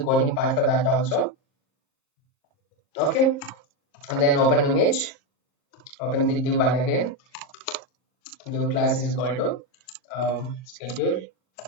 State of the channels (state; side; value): late; right; 38 ms